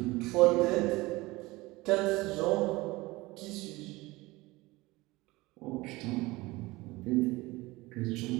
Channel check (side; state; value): left; quieter; 21.1 dB